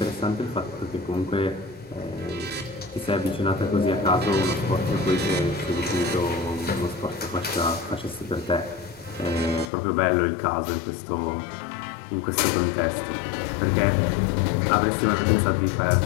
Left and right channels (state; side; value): drops out; right; at 9.7 s